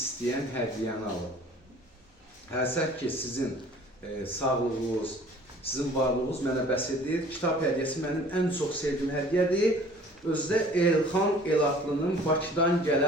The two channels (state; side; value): normal; both; correlation 0.50